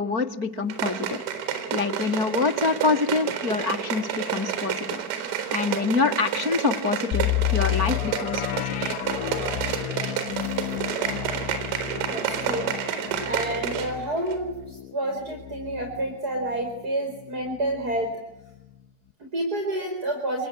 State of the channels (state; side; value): late; left; 5.1 ms